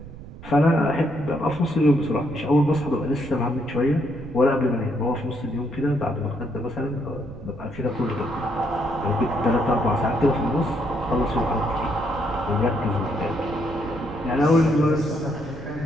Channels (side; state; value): right; noise; rumble, 15 dB below the sound